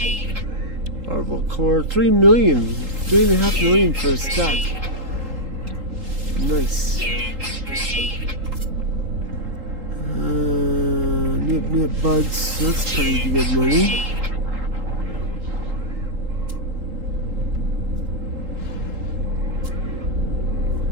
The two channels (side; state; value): left; late; 3.8 ms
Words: Orbital core, 3 million, 3.5 million for a stack. Nice. Nip buds, that's pretty good money.